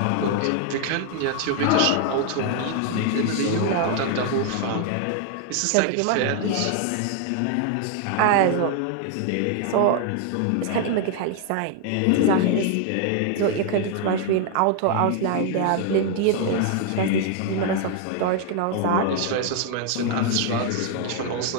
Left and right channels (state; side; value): different; both; correlation 0.00